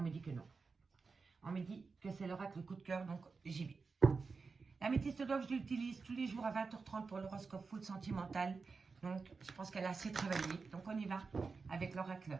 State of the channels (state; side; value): quieter; left; 4.6 dB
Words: me dit que non. On me dit que c'est l'oracle coup de cœur, donc j'y vais. L'améthyste love, je l'utilise tous les jours à 20h30 pour l'horoscope full sentimental. Donc, je pense qu'elle a assez travaillé. Donc, on y va avec